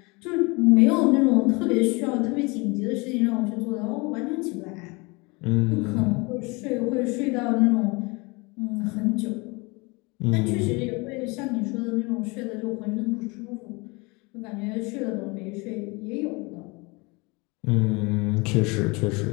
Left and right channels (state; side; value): quieter; right; 27.1 dB